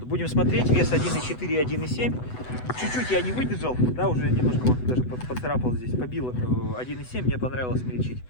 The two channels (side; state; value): right; late; 8.0 ms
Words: будем смотреть, вес 1.4 и 1.7. Чуть-чуть я не выдержал, да, уже немножко вот даже поцарапал здесь, побил 1.7, мне понравилось смельчить.